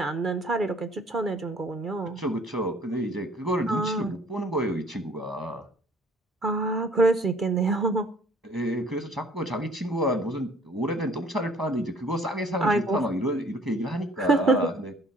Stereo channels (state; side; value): normal; both; correlation 0.55